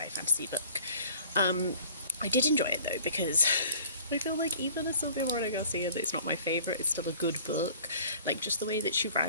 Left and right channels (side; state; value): both; inverted; correlation -0.50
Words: fantasy book. I did enjoy it though, because I feel like even a Silvia Moreno Garcia that's not my favourite, it's still a good book. Like, just the way that she